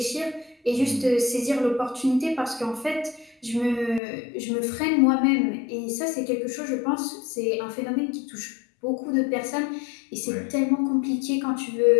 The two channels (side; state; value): right; drops out; at 4.0 s